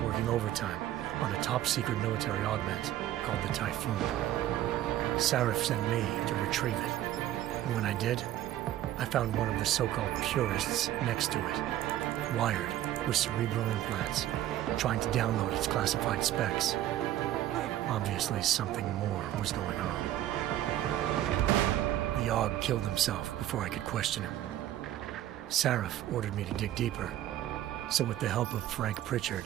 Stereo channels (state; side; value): quieter; left; 13.0 dB